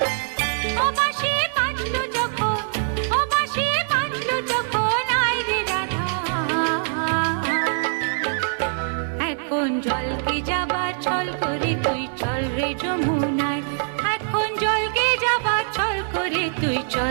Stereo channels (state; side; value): silent; left; digital silence